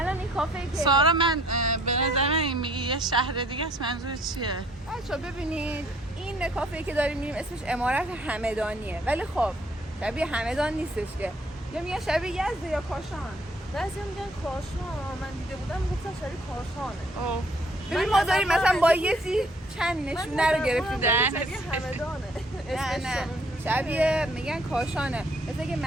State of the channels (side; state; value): both; normal; correlation 0.61